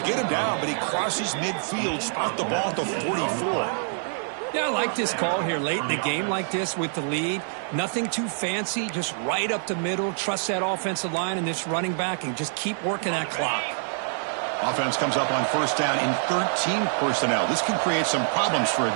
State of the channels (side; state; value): left; silent; digital silence